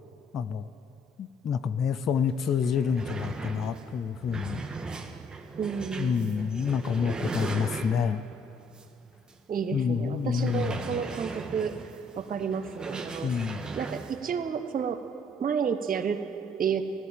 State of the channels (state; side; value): normal; both; correlation 0.65